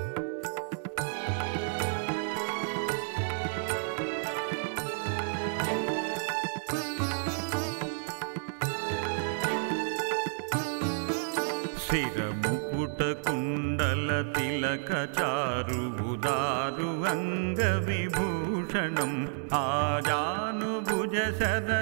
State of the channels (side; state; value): left; silent; 57 dB below the other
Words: शिरमुकुट కుటకుండల తిలక చారు ఉదారు అంగ విభూషణం ఆజానుభుజ శర